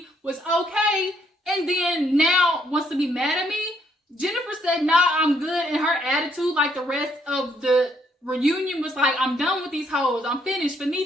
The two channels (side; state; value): both; normal; correlation 0.71